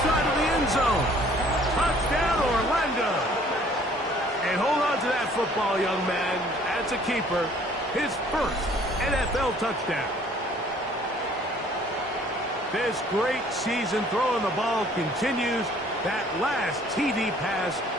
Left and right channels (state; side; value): normal; both; correlation 0.57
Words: side of the end zone. Touchdown, Orlando. And hold on to that football, young man. That's a keeper. His first NFL touchdown. This great season throwing the ball continues. That last TD pass,